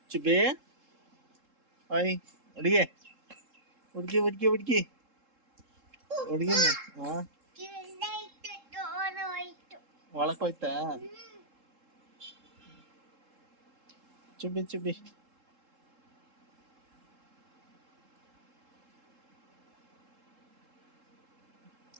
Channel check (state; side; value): late; left; 3.7 ms